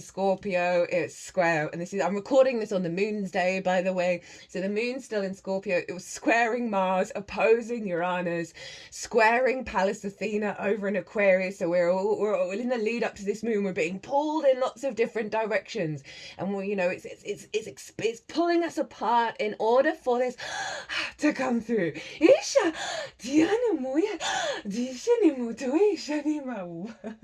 Scorpio. It's square. And I'm recording this on the moon's day, by the way. So the moon's still in Scorpio. It was squaring Mars, opposing Uranus, squaring Pallas Athena over in Aquarius. So we're all in the lead up to this moon. We're being pulled in lots of different directions. And we, you know, it's pulling us apart in order for this to come through. Isha, Diana Moya,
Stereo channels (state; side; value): identical; both; correlation 1.00